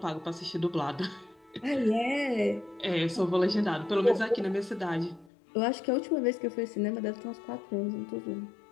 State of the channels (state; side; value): drops out; right; at 5.3 s